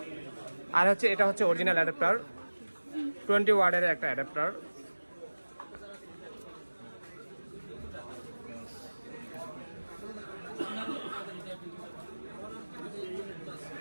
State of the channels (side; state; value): both; inverted; correlation -1.00